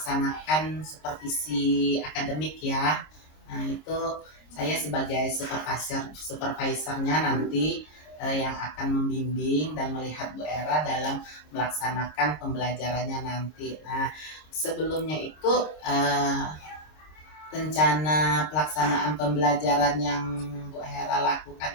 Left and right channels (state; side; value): late; right; 26 ms